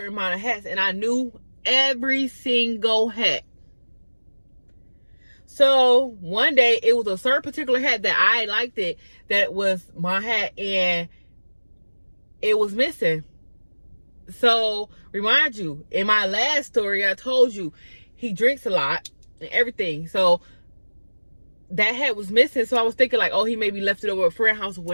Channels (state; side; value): inverted; both; correlation -1.00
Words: amount of hats, and I knew every single hat. So one day, it was a certain particular hat that I liked it, that was my hat, and it was missing. So remind you, in my last story, I told you he drinks a lot and everything. So that hat was missing. So I was thinking like, oh, he maybe left it over at a friend's house or